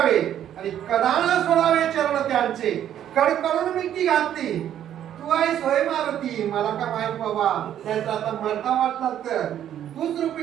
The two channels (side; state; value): left; quieter; 10.6 dB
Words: आणि कदान सोडावे चरण त्यांचे. कडकडून मिठी घातली. तू आहेस होय मारुती, मला का माहित बाबा. त्यांचा आता मरता वाटला तर तूच रूप